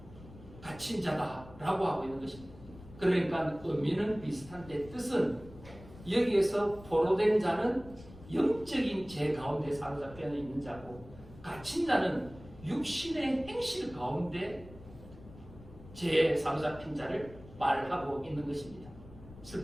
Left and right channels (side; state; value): left; noise; rumble, 18 dB below the sound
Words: 갇힌 자다라고 하고 있는 것입니다. 그러니까 의미는 비슷한데 뜻은 여기에서 포로된 자는 영적인 죄 가운데 사로잡혀 있는 자고, 갇힌 자는 육신의 행실 가운데 죄에 사로잡힌 자를 말하고 있는 것입니다.